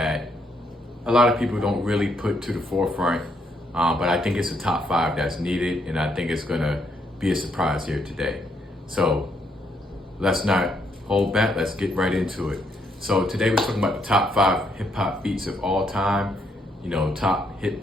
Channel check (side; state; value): both; normal; correlation 0.74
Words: a lot of people don't really put to the forefront, but I think it's a top 5 that's needed, and I think it's gonna be a surprise here today. So let's not hold back, let's get right into it. So today we're talking about the top 5 hip hop beats of all time. You know, top